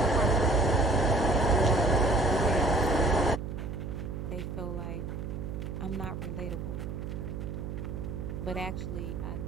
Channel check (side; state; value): right; noise; hum, 6 dB below the sound